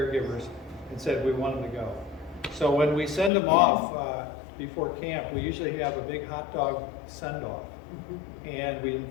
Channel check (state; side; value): drops out; right; at 3.3 s